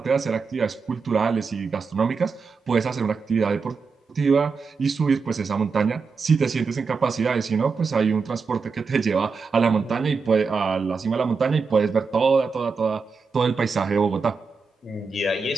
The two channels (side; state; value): left; quieter; 4.9 dB